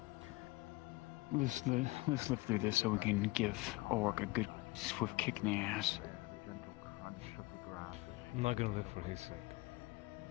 Let's live through this so we can give Orc a good swift kick in the ass. Gentle crunch of the grass. I'm not gonna live for his sake.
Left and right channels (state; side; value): quieter; right; 22.3 dB